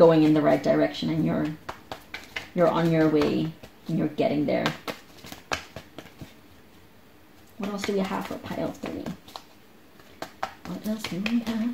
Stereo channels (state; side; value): identical; both; correlation 1.00